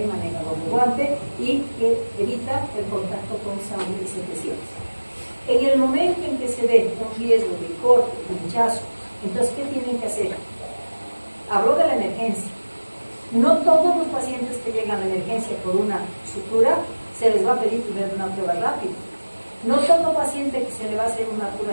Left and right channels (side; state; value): both; inverted; correlation -1.00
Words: maneja doble guante y que evita el contacto con sangre y secreciones? En el momento en que se ve un riesgo de corte, pinchazo, entonces ¿qué tienen que hacer? Hablo de la emergencia. No todos los pacientes que llegan a la emergencia por una sutura se les va a pedir primero una prueba rápida. No todo paciente que se le va a hacer una